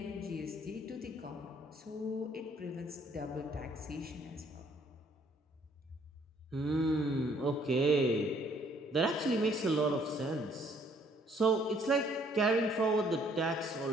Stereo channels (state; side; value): normal; both; correlation 0.63